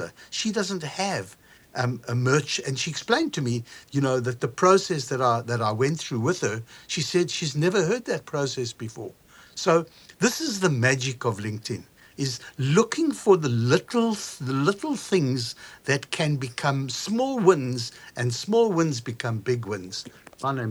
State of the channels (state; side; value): identical; both; correlation 1.00